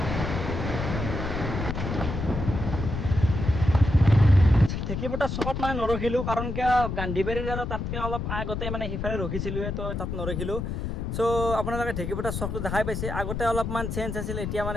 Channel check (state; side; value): noise; left; rumble, 4 dB below the sound